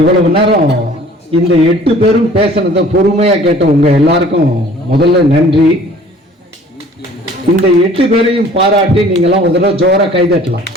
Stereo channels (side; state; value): both; normal; correlation 0.51